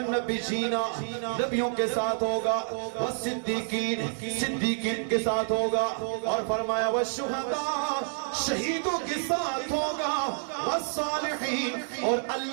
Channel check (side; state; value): left; silent; 59 dB below the other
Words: النبیین، نبیوں کے ساتھ ہوگا، والصدیقین، صدیقین کے ساتھ ہوگا، اور فرمایا والشہداء، شہیدوں کے ساتھ ہوگا، والصالحین، اور